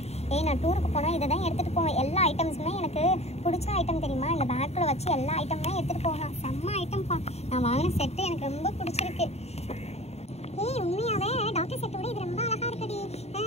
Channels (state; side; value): late; right; 0.31 ms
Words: நான் டூருக்கு போனா இதை தான் எடுத்துட்டு போவேன். எல்லா ஐட்டம்ஸுமே எனக்கு பிடிச்ச ஐட்டம் தெரியுமா? இந்த பேக்கில் வச்சு எல்லா ஐட்டமுமே எடுத்துட்டு போகலாம், செம்ம ஐட்டம்ப்பா. நான் வாங்கின செட்டு எனக்கு ரொம்ப பிடிச்சிருக்கு. உண்மையாவே டாக்டர் செட்டோட இது ரொம்ப அழகா இருக்குடி.